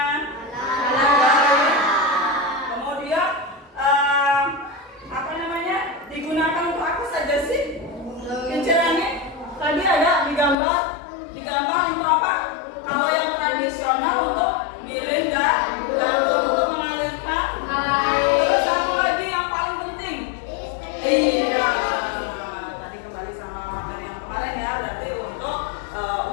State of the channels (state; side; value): drops out; right; at 10.6 s